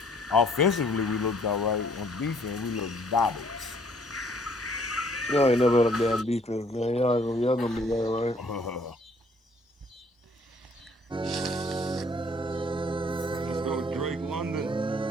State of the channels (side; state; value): both; normal; correlation 0.61